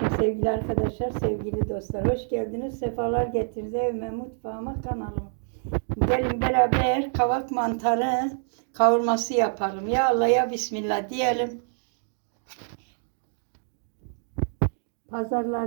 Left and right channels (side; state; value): left; silent; digital silence